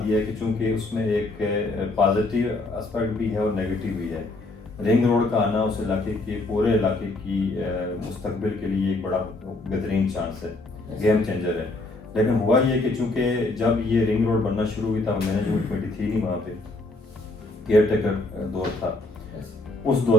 یہ ہے کہ چونکہ اس میں ایک پازیٹیو اسپیکٹ بھی ہے اور نیگیٹو بھی ہے، رنگ روڈ کا آنا اس علاقے کے پورے علاقے کی مستقبل کے لیے ایک بڑا بہترین چانس ہے، گیم چینجر ہے۔ لیکن ہوا یہ کہ چونکہ جب یہ رنگ روڈ بننا شروع ہوئی تھا، مینجمنٹ کمیٹی تھی نہیں وہاں پہ، کیئر ٹیکر دور تھا، اس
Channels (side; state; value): right; quieter; 3.0 dB